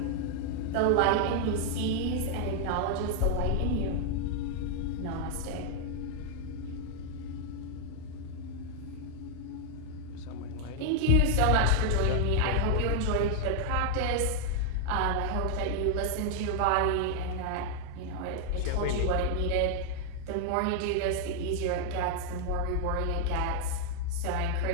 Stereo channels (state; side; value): different; both; correlation 0.00